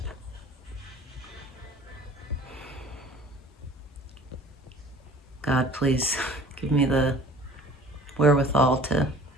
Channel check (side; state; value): both; normal; correlation 0.48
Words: God, please give me the wherewithal to